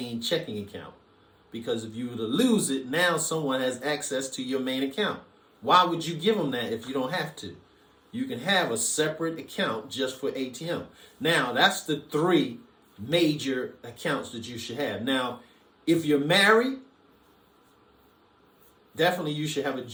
checking account, because if you were to lose it, now someone has access to your main account. Why would you give them that if you don't have to? You can have a separate account just for ATM. Now, that's the three major accounts that you should have. Now, if you're married, definitely you should have a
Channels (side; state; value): both; identical; correlation 1.00